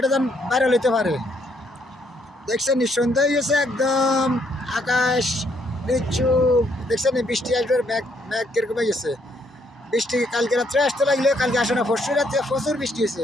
যেন ভাইরাল হইতে পারে। দেখছেন সন্ধ্যা হয়েছে একদম, আকাশ নিচু। দেখছেন বৃষ্টি আসবে, ম্যাঘ ম্যাঘ কিরকম হয়ে গেছে। বৃষ্টি কালকে রাত্রে আসতে লাগলে, কালকে আসে না, পরশু রাত্রে প্রচুর বৃষ্টি হয়েছে,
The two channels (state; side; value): normal; both; correlation 0.71